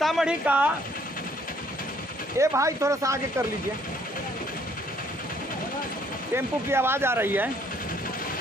का, ए भाई थोड़ा सा आगे कर लीजिए, टेम्पो की आवाज आ रही है।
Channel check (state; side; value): normal; both; correlation 0.64